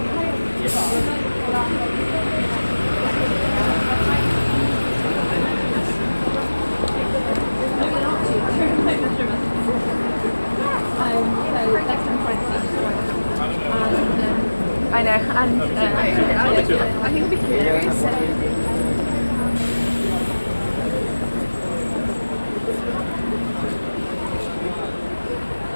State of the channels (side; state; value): both; inverted; correlation -1.00